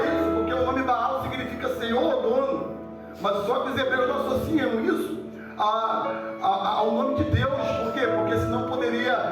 isso, porque o nome Baal significa Senhor ou dono. Mas só que os hebreus não associam isso ao nome de Deus. Por quê? Porque senão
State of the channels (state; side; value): identical; both; correlation 1.00